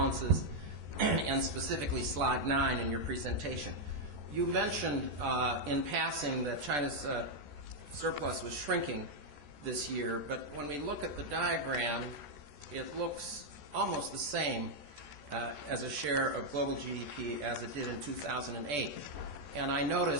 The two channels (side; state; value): left; late; 14 ms